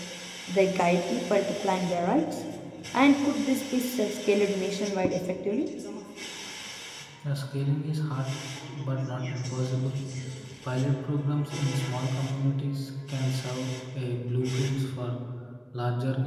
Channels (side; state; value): both; identical; correlation 1.00